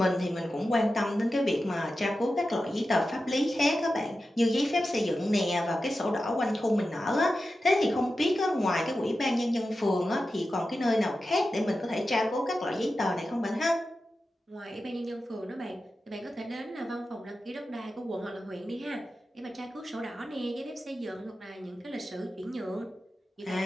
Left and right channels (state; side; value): normal; both; correlation 0.92